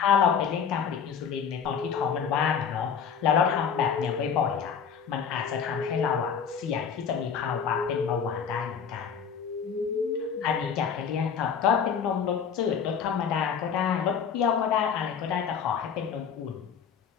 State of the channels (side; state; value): right; quieter; 7.0 dB